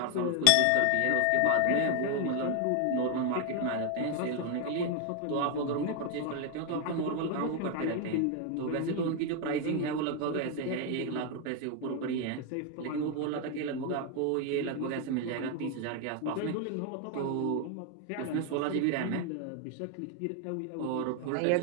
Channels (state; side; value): different; both; correlation 0.01